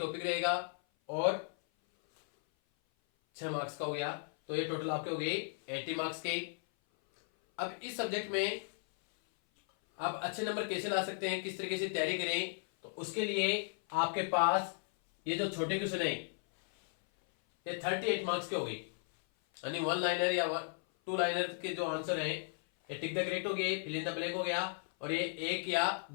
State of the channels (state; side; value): silent; right; 54 dB below the other